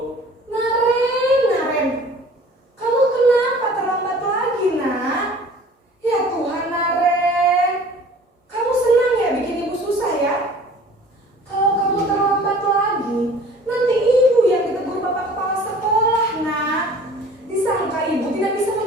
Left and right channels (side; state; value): both; normal; correlation 0.48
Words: Naren. Kamu kenapa terlambat lagi, Nak? Ya Tuhan, Naren. Kamu senang ya bikin ibu susah ya? Kalau kamu terlambat lagi, nanti ibu yang ditegur bapak kepala sekolah, Nak. Disangka ibu tidak bisa